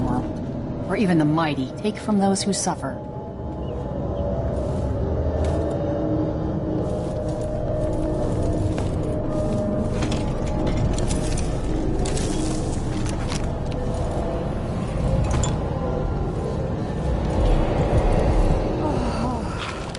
Or even the mighty take from those who suffer.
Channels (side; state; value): both; identical; correlation 1.00